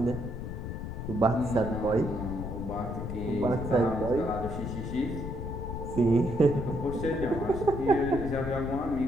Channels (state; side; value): noise; left; rumble, 6 dB below the sound